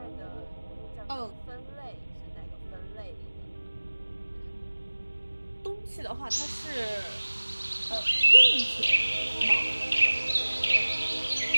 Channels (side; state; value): both; inverted; correlation -1.00